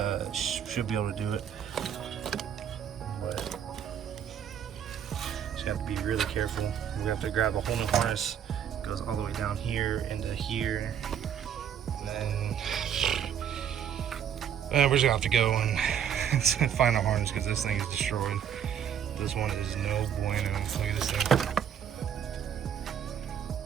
Should be able to do it, but just have to be really careful. We have to grab the whole new harness. It goes all the way down here into here, and then we're just gonna have to go and find a harness because this thing is destroyed. This one is no bueno. Look at this thing.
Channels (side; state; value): left; quieter; 8.8 dB